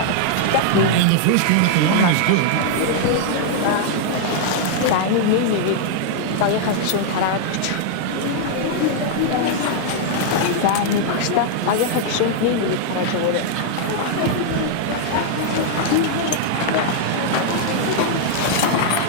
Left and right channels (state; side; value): different; both; correlation -0.01